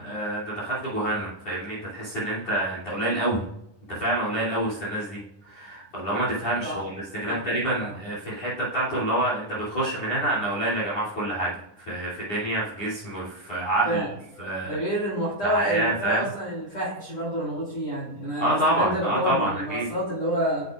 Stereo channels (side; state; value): right; late; 9.8 ms